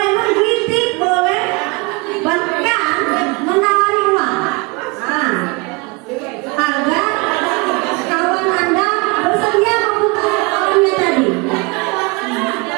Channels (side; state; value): left; quieter; 27.8 dB